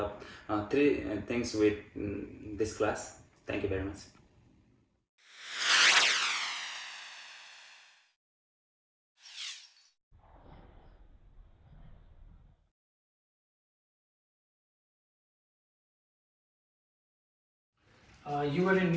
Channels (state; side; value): identical; both; correlation 1.00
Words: of three things with this class. Thank you very much. You were in